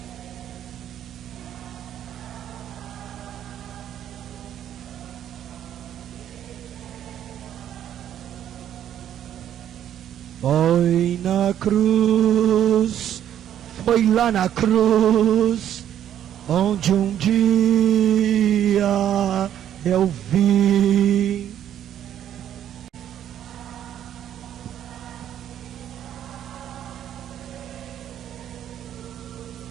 foi na cruz, foi lá na cruz, onde um dia eu vi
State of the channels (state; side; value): quieter; left; 10.5 dB